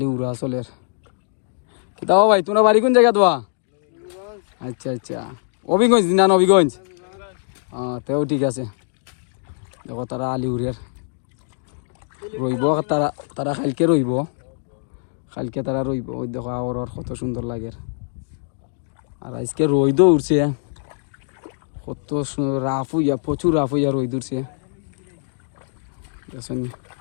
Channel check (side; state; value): right; silent; digital silence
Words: উড়া চলের দাও ভাই। তোমরা বাড়ি কোন জায়গা দোয়া? আচ্ছা আচ্ছা, অভিগঞ্জ না? অভিগঞ্জ, তেও ঠিক আছে। দেখো তারা আলি উড়ের রইব, তারা তারা কালকে রইব, কালকে তারা রইব। ওই দেখো আর কত সুন্দর লাগে। আর আজকে রইদও উঠছে, কত রাফ হইয়া, প্রচুর রাফ হইয়া রই উঠছে।